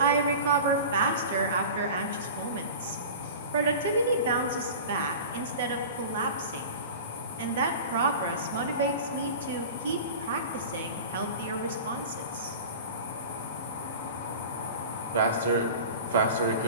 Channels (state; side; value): inverted; both; correlation -0.35